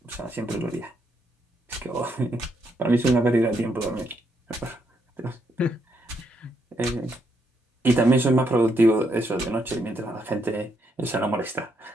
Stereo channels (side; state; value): both; normal; correlation 0.77